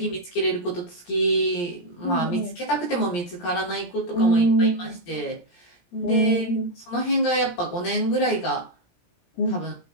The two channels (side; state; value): right; late; 17 ms